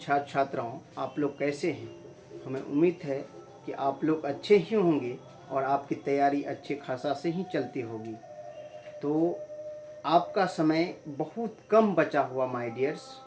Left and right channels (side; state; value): both; identical; correlation 1.00